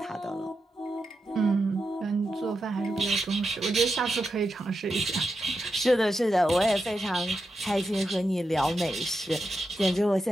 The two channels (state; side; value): normal; both; correlation 0.88